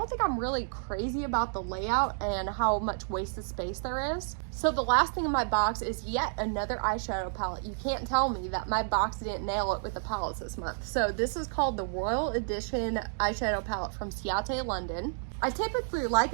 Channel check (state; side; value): silent; left; digital silence